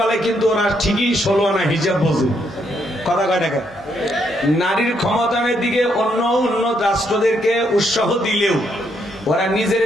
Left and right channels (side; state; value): both; normal; correlation 0.75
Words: কিন্তু ওরা ঠিকই 16 আনা হিজাব বোঝে। কথা কয় টাকা? নারীর ক্ষমতায়নের দিকে অন্য উন্নত রাষ্ট্রদেরকে উৎসাহ দিলেও ওরা নিজের